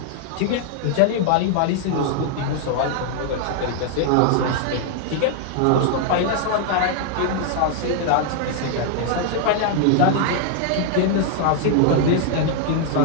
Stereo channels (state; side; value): different; both; correlation 0.00